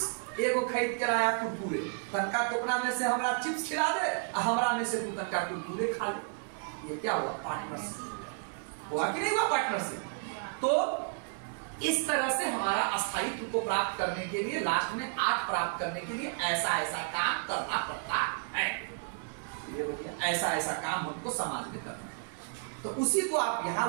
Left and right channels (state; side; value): silent; left; 56 dB below the other